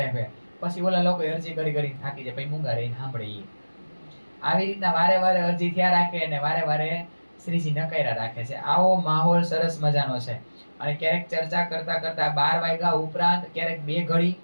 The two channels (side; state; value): both; inverted; correlation -1.00